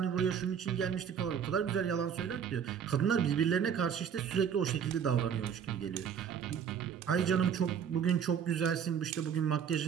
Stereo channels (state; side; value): quieter; left; 7.8 dB